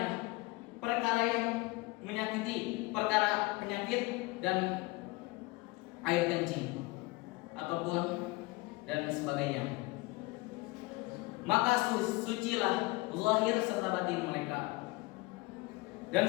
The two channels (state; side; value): quieter; right; 23.1 dB